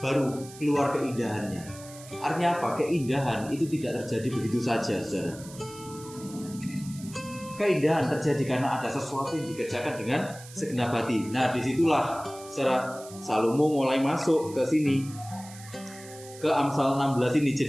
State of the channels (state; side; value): noise; right; hiss, 18 dB below the sound